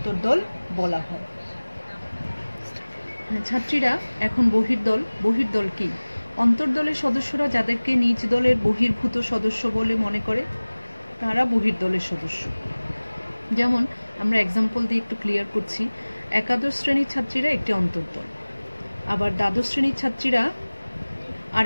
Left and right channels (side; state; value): both; inverted; correlation -1.00